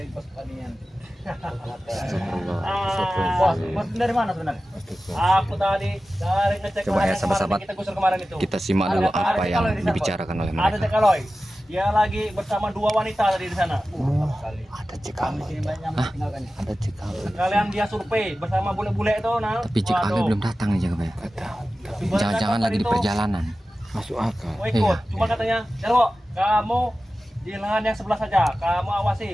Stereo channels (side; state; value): both; normal; correlation 0.95